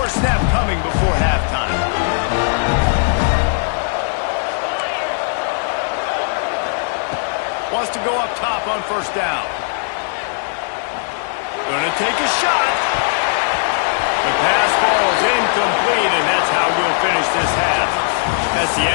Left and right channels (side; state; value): right; silent; digital silence